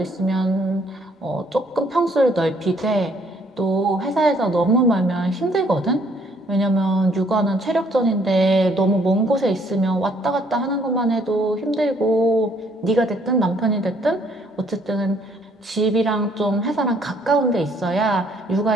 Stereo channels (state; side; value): normal; both; correlation 0.65